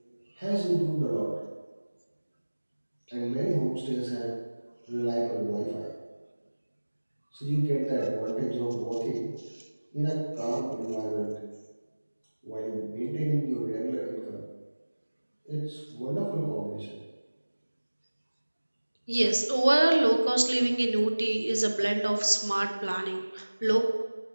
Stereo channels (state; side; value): inverted; both; correlation -1.00